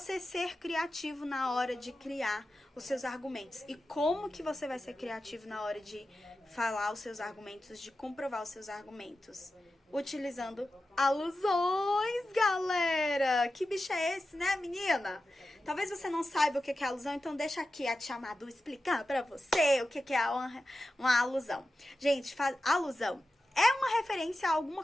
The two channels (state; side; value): normal; both; correlation 0.92